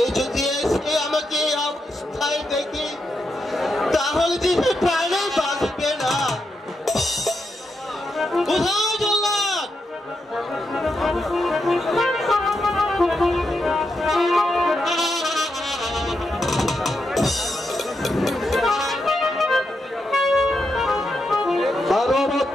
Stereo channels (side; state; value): both; normal; correlation 0.84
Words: যদি এসে আমাকে অবস্থায় দেখি, তাহলে যে প্রাণে বাঁচবে না। কোথায় জল্লাদ? বারো